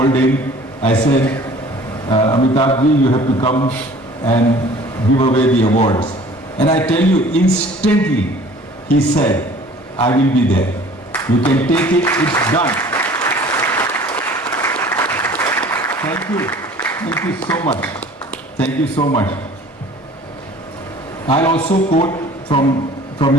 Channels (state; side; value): normal; both; correlation 0.49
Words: him. I said, Amitabh ji, you have to come and give away the awards. And I tell you, instantly, he said, I will be there. You can take it, it's done. Thank you. Thank you so much. Thank you so much. I'll also quote from